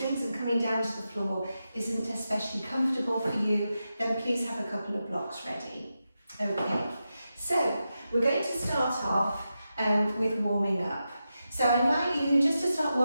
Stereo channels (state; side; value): inverted; both; correlation -0.89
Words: and coming down to the floor isn't especially comfortable for you, then please have a couple of blocks ready. Okay, so we're going to start off with warming up. So I invite you just to start